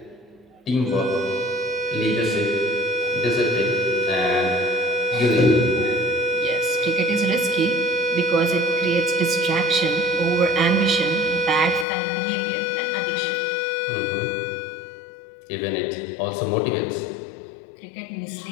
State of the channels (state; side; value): drops out; right; at 11.9 s